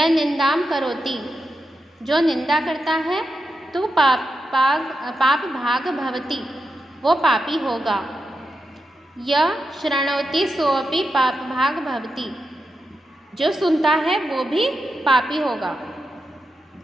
निंदाम करोति, जो निंदा करता है तो पाप भाग भवति, वो पापी होगा। यह शृणोति सोऽपि पाप भाग भवति, जो सुनता है वो भी पापी होगा।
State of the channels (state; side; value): normal; both; correlation 0.88